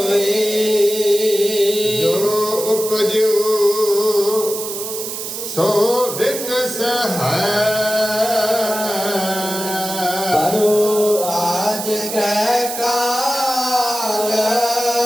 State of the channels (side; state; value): right; noise; hiss, 7 dB below the sound